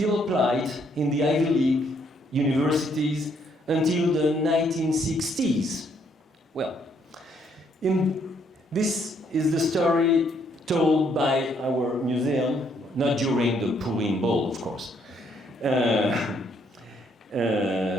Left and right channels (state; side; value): normal; both; correlation 0.70